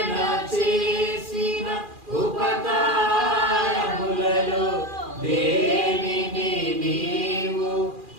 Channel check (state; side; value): late; left; 2.4 ms